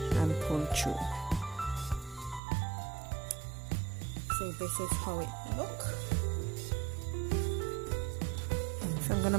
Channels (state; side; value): drops out; left; at 2.4 s